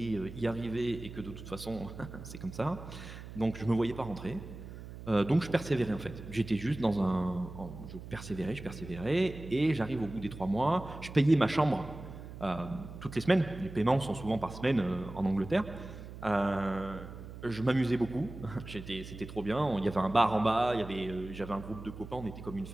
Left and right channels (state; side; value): noise; right; hum, 12 dB below the sound